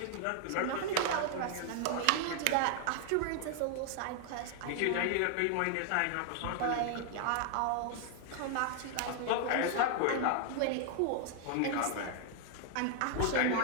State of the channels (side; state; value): both; different; correlation 0.00